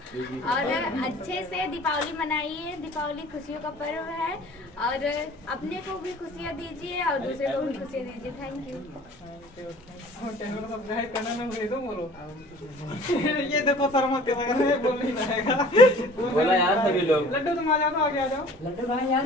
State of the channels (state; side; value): normal; both; correlation 0.48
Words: और अच्छे से दीपावली मनाइए। दीपावली खुशियों का पर्व है और अपने को भी खुशियाँ दीजिए और दूसरे को भी खुशियाँ दीजिए। Thank you. ये देखो शर्मा के बोल नहीं रहेगा। बोला यार सभी लोग। लड्डू तुम आ जाओ, तो आगे आ जाओ। लड्डू भाई यार,